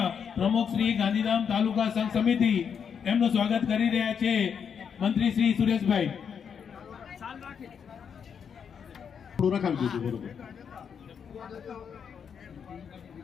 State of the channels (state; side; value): quieter; right; 7.1 dB